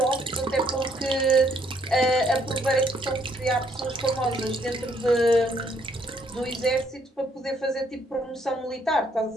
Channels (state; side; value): normal; both; correlation 0.68